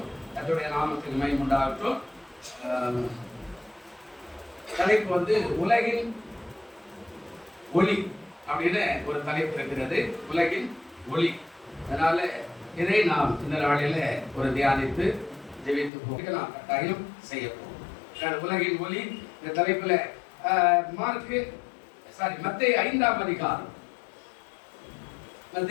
அதனுடைய நாமத்துக்கு மகிமை உண்டாகட்டும். தலைப்பு உலகின் ஒளி அப்படின்னு ஒரு தலைப்பு இருக்கிறது, உலகின் ஒளி. அதனால இதை நாம் இந்த நாளில ஒரு தியானித்து ஜெபித்து போக நாம் கட்டாயம் செய்ய போகிறோம். உலகின் ஒளி இந்த தலைப்புல மத்தேயு 5ஆம் அதிகாரம்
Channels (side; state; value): right; drops out; at 15.9 s